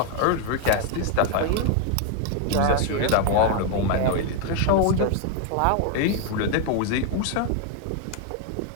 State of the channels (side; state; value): both; different; correlation 0.01